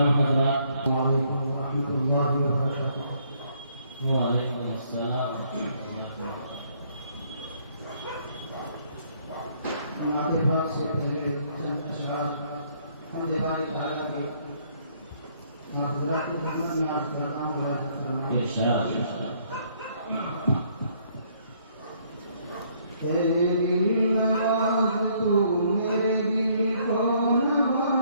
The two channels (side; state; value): both; inverted; correlation -0.66